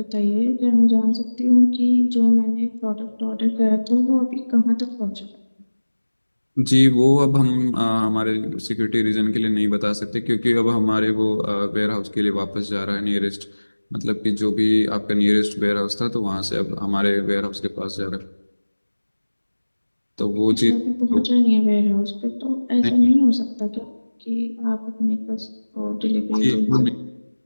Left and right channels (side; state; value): both; inverted; correlation -1.00